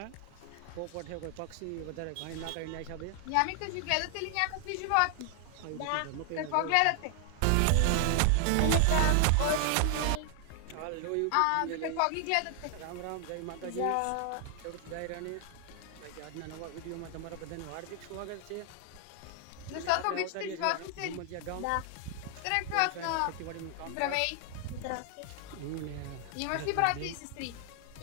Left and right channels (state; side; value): different; both; correlation 0.00